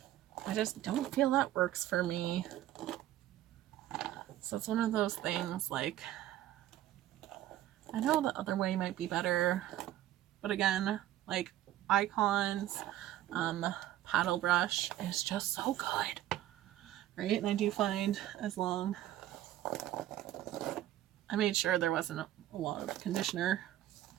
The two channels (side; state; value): left; quieter; 13.4 dB